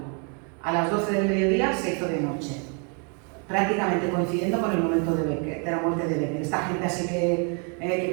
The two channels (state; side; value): quieter; left; 38.2 dB